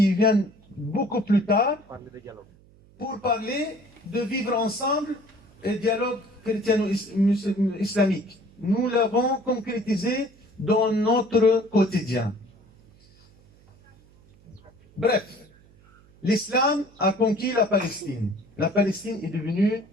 viennent beaucoup plus tard pour parler de vivre ensemble et dialogue chrétiano-islamique. Nous l'avons concrétisé dans notre quotidien. Bref, l'islam a conquis la Palestine. La Palestine est devenue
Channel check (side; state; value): right; noise; hum, 28 dB below the sound